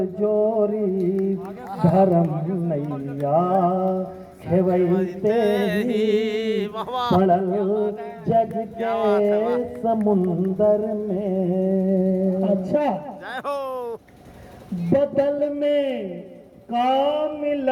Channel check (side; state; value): both; identical; correlation 1.00